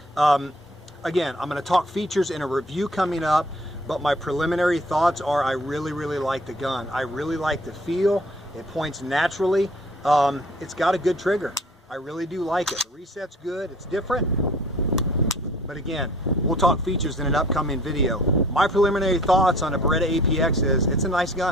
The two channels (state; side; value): normal; both; correlation 0.53